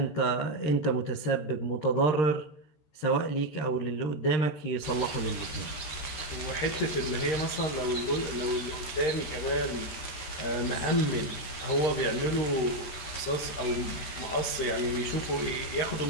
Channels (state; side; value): late; right; 13 ms